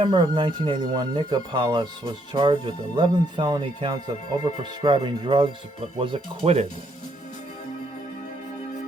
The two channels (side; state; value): both; normal; correlation 0.72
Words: of 1981, Nikopoulos was charged with 11 felony counts of overprescribing drugs but was acquitted.